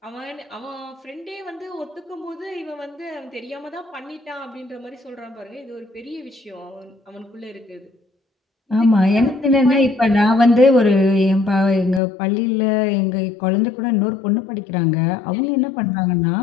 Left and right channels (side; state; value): right; drops out; at 12.0 s